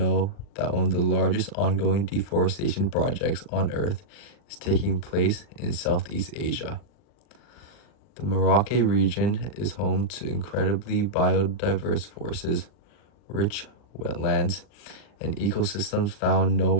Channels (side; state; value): right; late; 39 ms